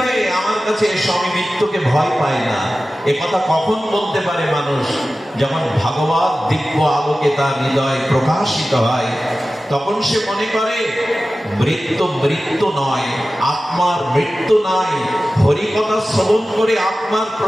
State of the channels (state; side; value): normal; both; correlation 0.95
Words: আমার কাছে এসো, আমি মৃত্যুকে ভয় পাই না। এ কথা কখন বলতে পারে মানুষ? যখন ভাগবত দিব্য আলোকে তার হৃদয় প্রকাশিত হয়, তখন সে মনে করে মৃত্যু মৃত্যু নয়, আত্মার মৃত্যু নাই। হরিকথা শ্রবণ করে আত্মার